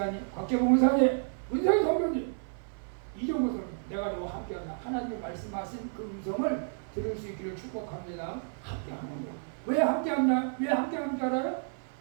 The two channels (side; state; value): left; silent; 57 dB below the other